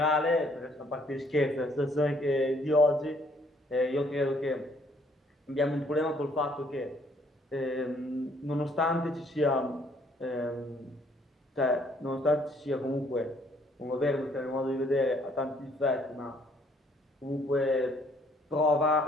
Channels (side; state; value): both; normal; correlation 0.64